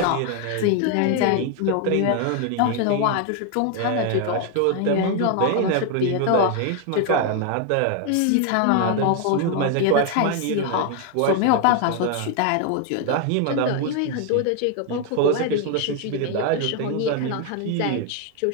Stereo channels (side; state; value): both; different; correlation 0.01